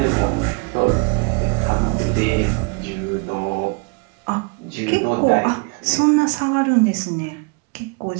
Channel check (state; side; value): quieter; left; 32.2 dB